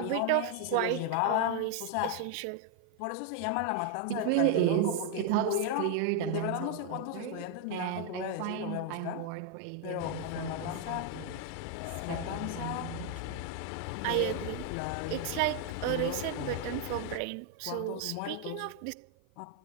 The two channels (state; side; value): different; both; correlation 0.01